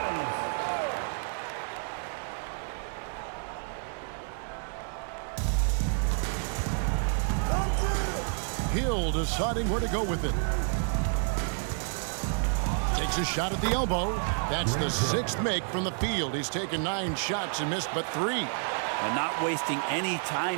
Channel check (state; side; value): silent; left; 58 dB below the other